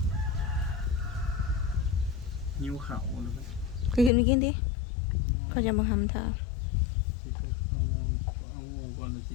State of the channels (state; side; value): drops out; right; at 4.1 s